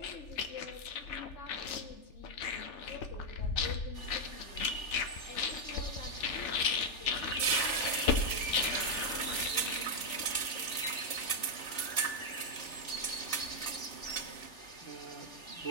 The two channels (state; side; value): late; right; 3.4 ms